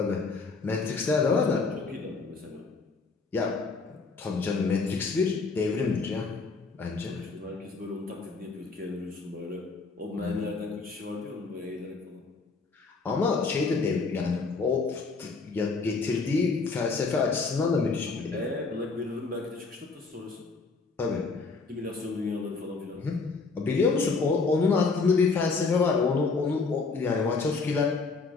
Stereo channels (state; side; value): quieter; right; 4.2 dB